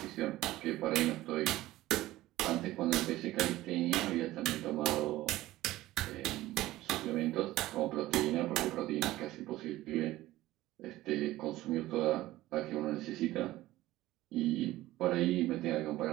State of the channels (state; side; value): quieter; left; 16.5 dB